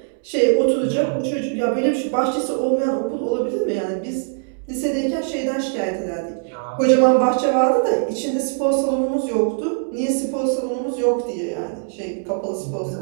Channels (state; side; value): silent; left; digital silence